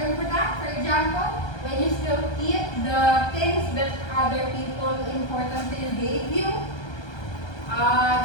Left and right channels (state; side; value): late; right; 1.3 ms